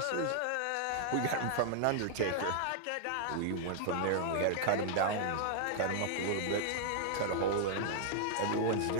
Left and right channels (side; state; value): both; different; correlation -0.01